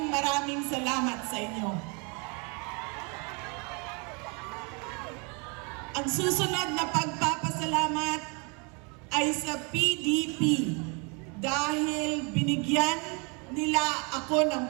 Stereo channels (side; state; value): left; quieter; 32.9 dB